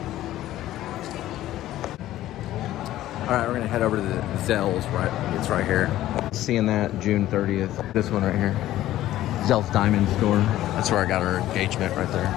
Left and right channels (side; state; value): right; quieter; 14.2 dB